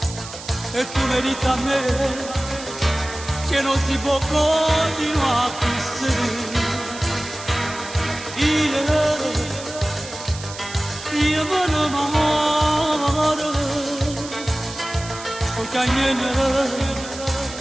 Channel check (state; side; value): noise; right; hiss, 13 dB below the sound